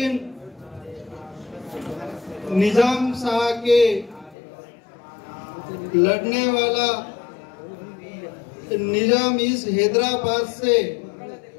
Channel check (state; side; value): drops out; right; at 4.4 s